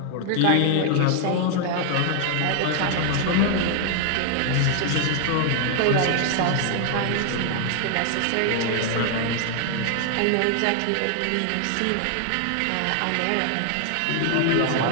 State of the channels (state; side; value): different; both; correlation 0.00